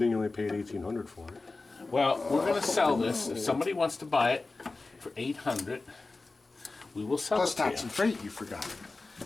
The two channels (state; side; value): quieter; right; 3.5 dB